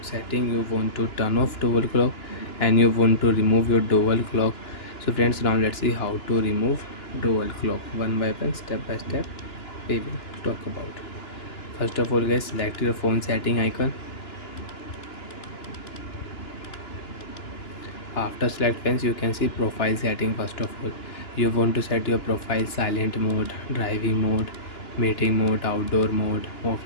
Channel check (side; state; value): right; late; 2.9 ms